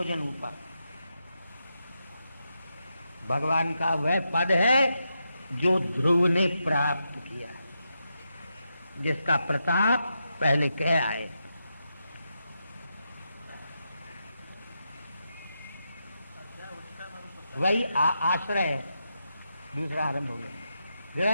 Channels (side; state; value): both; inverted; correlation -0.86